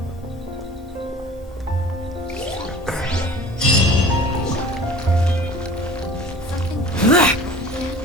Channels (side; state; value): both; normal; correlation 0.43